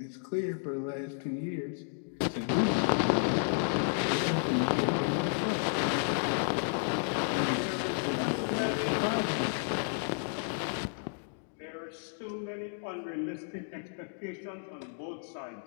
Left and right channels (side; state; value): right; silent; digital silence